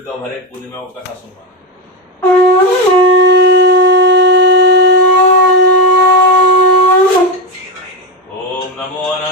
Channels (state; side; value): normal; both; correlation 0.12